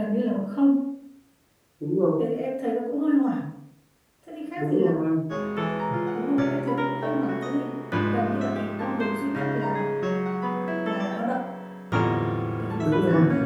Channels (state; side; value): identical; both; correlation 1.00